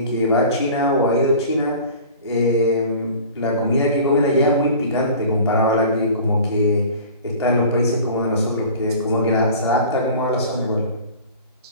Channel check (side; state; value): both; inverted; correlation -0.42